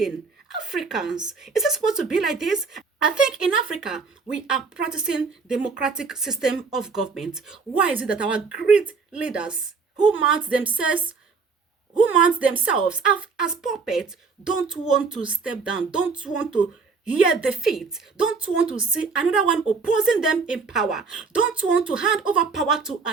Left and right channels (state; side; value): quieter; left; 4.8 dB